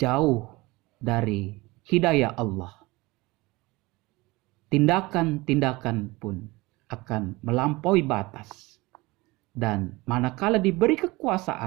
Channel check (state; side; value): quieter; left; 22.2 dB